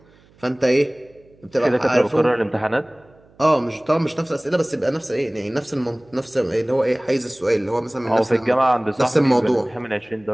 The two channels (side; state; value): right; noise; hum, 30 dB below the sound